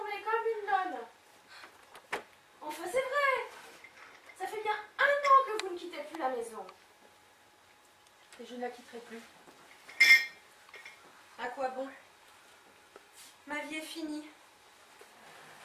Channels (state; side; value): identical; both; correlation 1.00